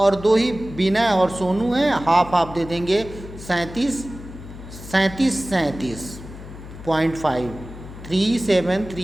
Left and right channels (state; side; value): noise; left; hum, 14 dB below the sound